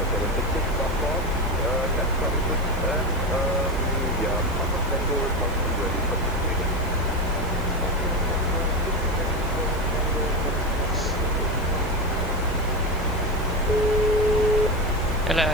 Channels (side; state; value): left; noise; hiss, 22 dB below the sound